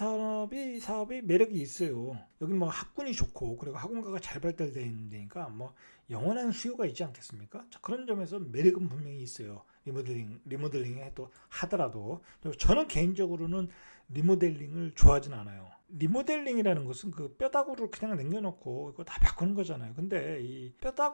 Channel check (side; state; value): both; inverted; correlation -1.00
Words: 매력이 있어요. 여기 뭐 학군이 좋고 그리고 학원가가 잘 발달되어 있는 데니까 뭐 영원한 수요가 있지 않겠습니까? 자, 그런 점에서 매력은 분명히 있어요. 리모델링에 또 하더라도 저는 개인적으로는 리모델링을 좋아하진 않아요. 리모델링이라는 것은 그 뼈다구를 그냥 남겨놓고 이거 다 바꾸는 거잖아요. 근데 이